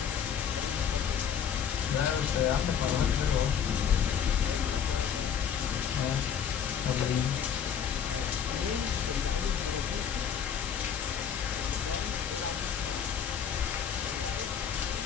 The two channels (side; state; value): right; quieter; 7.8 dB